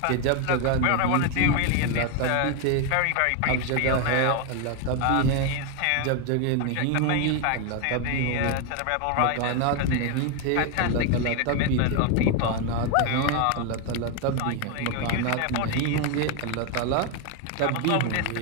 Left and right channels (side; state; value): both; different; correlation 0.01